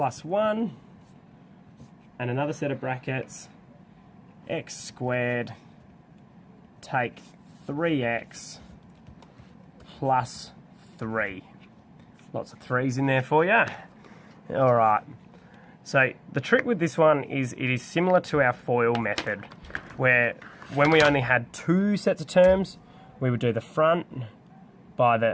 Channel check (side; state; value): both; identical; correlation 1.00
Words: 1 and another set of brackets x squared take 3x plus 3. Lots of 3's in there for you. Alright, so the trick with this one is it is similar to our FOIL method, where when we only had two sets of terms, we would do the front by